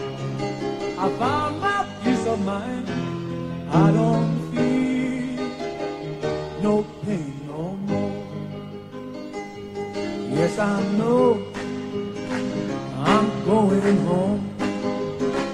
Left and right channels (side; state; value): both; identical; correlation 1.00